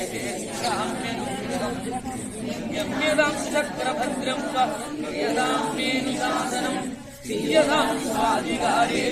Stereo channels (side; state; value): both; identical; correlation 1.00